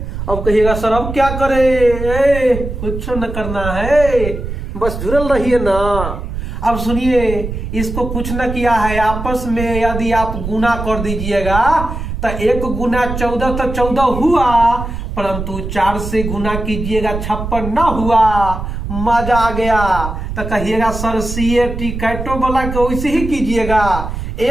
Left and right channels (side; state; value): right; noise; rumble, 6 dB below the sound